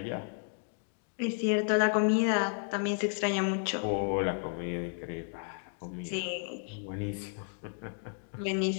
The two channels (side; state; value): right; silent; 56 dB below the other